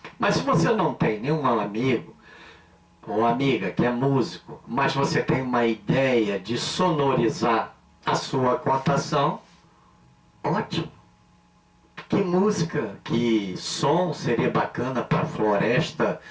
Mas se você não tem nenhum amigo ou amiga que é músico, mas você tem uma ideia de sonorizar a sua contação, ótimo. Que música, que som seria bacana para a floresta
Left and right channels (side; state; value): both; identical; correlation 1.00